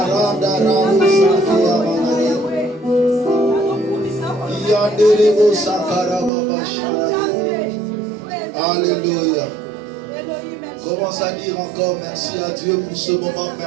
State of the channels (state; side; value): drops out; left; at 6.3 s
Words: rada ramusa yamanaye. Yandelebo sakara baba shara. Alléluia. Commence à dire encore merci à Dieu pour ce moment